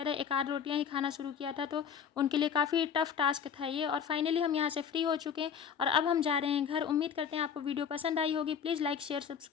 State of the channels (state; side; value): quieter; right; 7.5 dB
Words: था, एक आध रोटियाँ ही खाना शुरू किया था, तो उनके लिए काफ़ी टफ टास्क था ये। और फाइनली हम यहाँ से फ्री हो चुके हैं और अब हम जा रहे हैं घर। उम्मीद करते हैं आपको वीडियो पसंद आई होगी। प्लीज़ लाइक शेयर